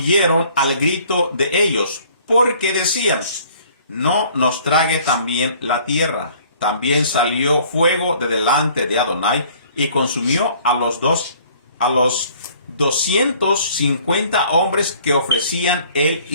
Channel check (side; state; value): both; inverted; correlation -0.56